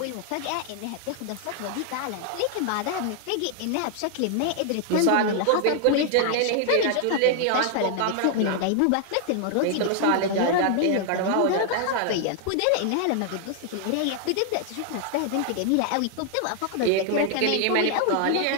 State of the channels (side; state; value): both; different; correlation 0.00